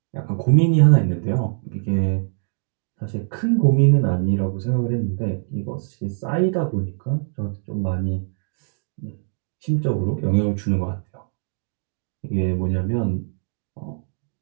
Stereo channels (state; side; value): silent; left; 63 dB below the other